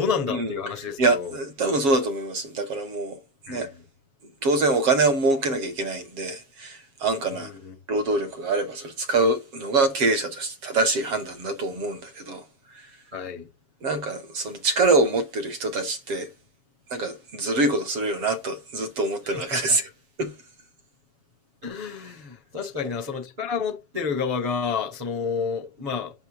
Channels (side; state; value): left; late; 7.2 ms